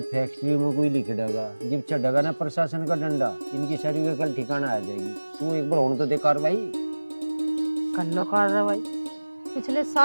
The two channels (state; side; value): inverted; both; correlation -1.00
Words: फैक्ट्री में कोई लिख देगा, जब चढ़ेगा ना प्रशासन का डंडा, इनकी सारी का कल ठिकाना आ जाएगी। तू एक बार होने तो दे कार्रवाई, कर लो कार्रवाई। पिछले